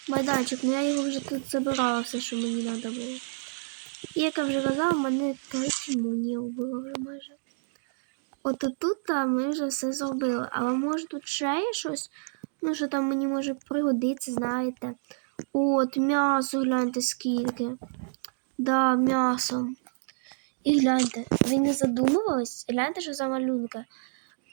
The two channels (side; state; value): left; silent; digital silence